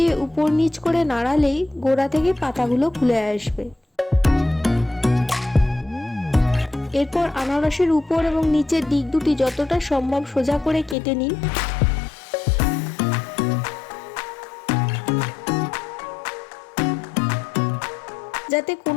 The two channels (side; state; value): right; drops out; at 11.0 s